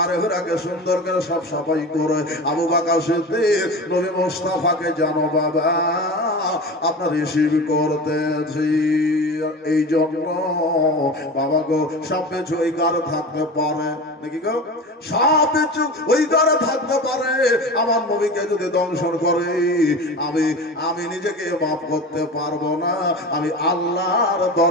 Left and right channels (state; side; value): normal; both; correlation 0.31